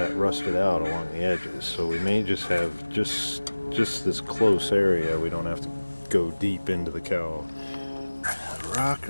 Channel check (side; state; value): both; inverted; correlation -1.00